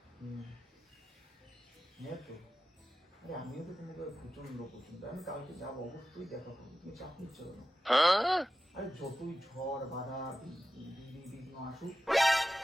হ্যাঁ তো, আরে আমিও তো তোমাকে প্রচন্ড পছন্দ। আমি কালকে যাবো, অবশ্যই দেখা করবো। তুমি চাপ নিচ্ছ কেন? আরে যতই ঝড় বাধা বিঘ্ন আসুক,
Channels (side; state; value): both; normal; correlation 0.93